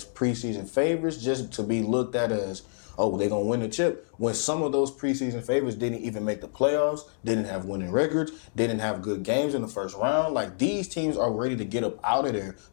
preseason favorites just to be looked at as, oh, they're going to win the chip. When some of those preseason favorites didn't even make the playoffs, didn't have winning records, didn't have good games in the first round. Like, these teams are ready to get up out of there.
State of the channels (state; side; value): silent; right; digital silence